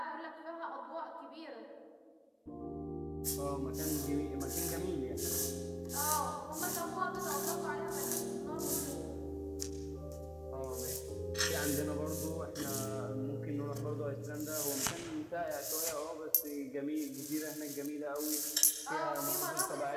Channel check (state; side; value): identical; both; correlation 1.00